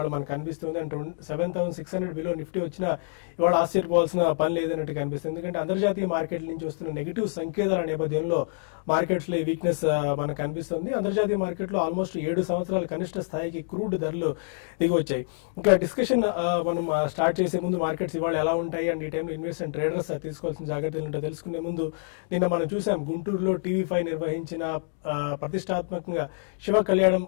మనకు కనిపిస్తుంది. అండ్ 7,600 బిలో నిఫ్టీ వచ్చినా ఇవాళ ఆశ్చర్యపోవాల్సిన పని లేదన్నట్టు కనిపిస్తుంది. ఎందుకంటే అంతర్జాతీయ మార్కెట్ల నుంచి వస్తున్న నెగిటివ్ సంకేతాల నేపథ్యంలో మార్కెట్స్ లో ఈ వీక్నెస్ మనకు కనిపిస్తుంది. అంతర్జాతీయ మార్కెట్ లో ఆల్మోస్ట్ 7 సంవత్సరాల కనిష్ట స్థాయికి క్రూడ్ ధరలు దిగి వచ్చాయి. ఇంకా డిస్కషన్ మనం స్టార్ట్ చేసే ముందు మార్కెట్స్ ఇవాళ ఎలా ఉంటాయి అండ్ ఈ టైంలో ఇన్వెస్టర్ అండ్ ట్రేడర్స్ తీసుకోవాల్సిన జాగ్రత్తలు ఏంటో తెలుసుకునే ముందు నిన్న మనం చూసాం గుంటూరులో TV5 నిర్వహించిన ప్రతిష్టాత్మకంగా శివ కళ్యాణం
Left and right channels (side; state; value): right; silent; digital silence